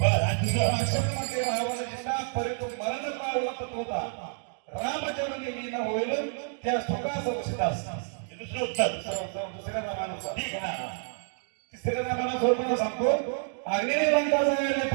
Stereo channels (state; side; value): silent; left; 59 dB below the other